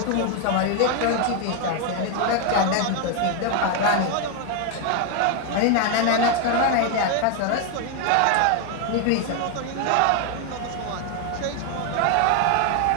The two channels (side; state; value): both; different; correlation 0.01